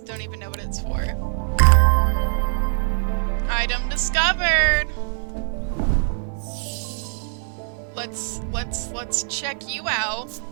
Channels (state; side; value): silent; left; digital silence